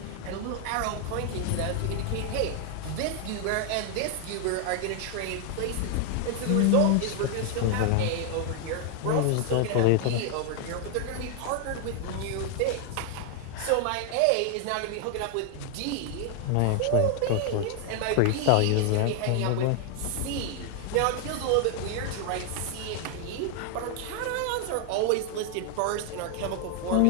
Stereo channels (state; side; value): different; both; correlation 0.00